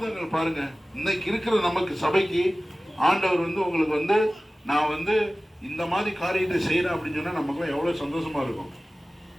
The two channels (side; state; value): both; normal; correlation 0.97